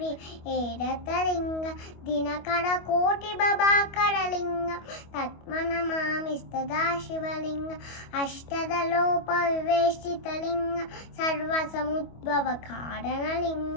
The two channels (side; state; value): right; late; 25 ms